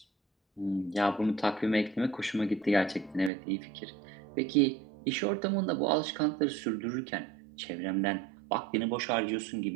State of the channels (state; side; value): drops out; left; at 3.3 s